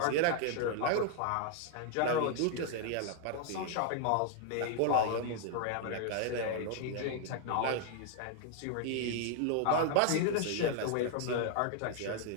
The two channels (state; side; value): different; both; correlation 0.00